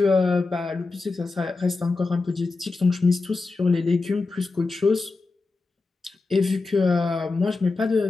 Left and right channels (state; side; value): quieter; right; 3.7 dB